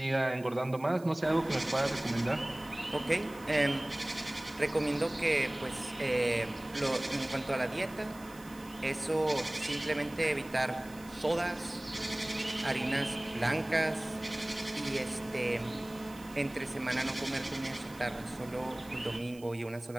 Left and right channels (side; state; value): right; noise; hiss, 22 dB below the sound